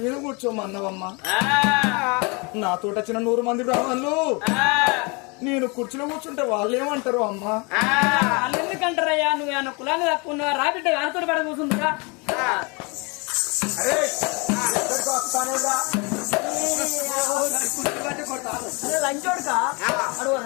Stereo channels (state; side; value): quieter; right; 30.0 dB